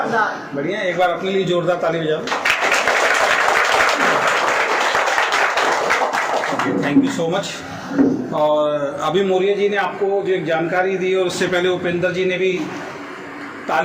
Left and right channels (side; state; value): both; identical; correlation 1.00